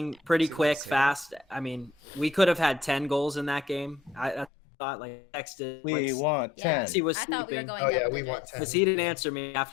pretty quick, fast. I mean, we could have had 10 goals in that game. I thought, like, texted. We want 10. He was I thought we were sleeping. going yeah, double we digits. want 10. Because he didn't answer me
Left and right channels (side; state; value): right; drops out; at 4.5 s